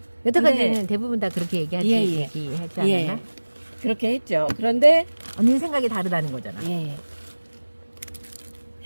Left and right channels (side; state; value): both; inverted; correlation -1.00